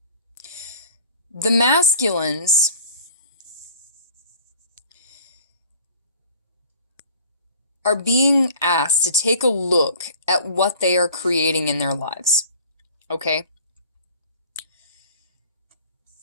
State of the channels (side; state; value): both; inverted; correlation -0.48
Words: The masculines are being asked to take a look at what they are creating in their lives. Okay?